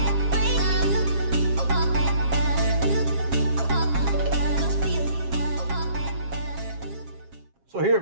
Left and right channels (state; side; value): late; left; 7.4 ms